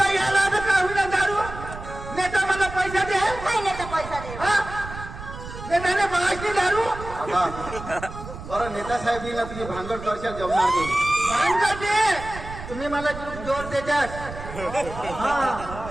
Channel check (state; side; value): noise; right; rumble, 11 dB below the sound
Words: यायला तर का होईना दारू नेता मला पैसा दे काय नेता पैसा दे हा नेताने मागणी दारू काका अरे नेता साहेब येईल ना तुम्ही भांगड करशाल जमणार नाही भांडा दे तुम्ही मला जोर देतात